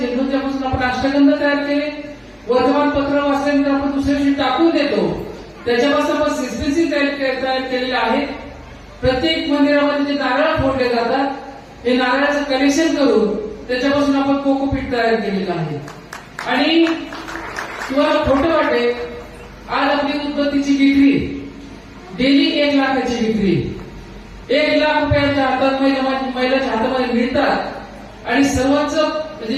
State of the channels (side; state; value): both; identical; correlation 1.00